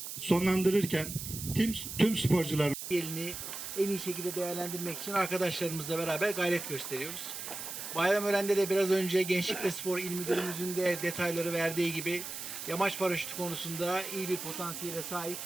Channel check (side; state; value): right; noise; hiss, 7 dB below the sound